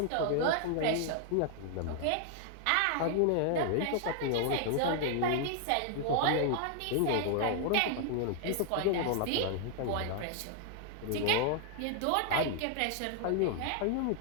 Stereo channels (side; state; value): both; different; correlation 0.00